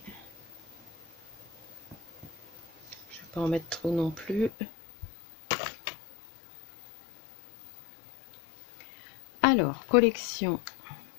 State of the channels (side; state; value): right; drops out; at 4.5 s